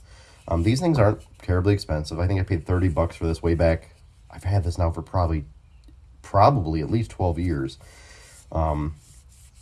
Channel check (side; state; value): both; identical; correlation 1.00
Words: These things aren't terribly expensive. I think I paid 30 bucks for this way back. I've had this now for probably at least 12 years.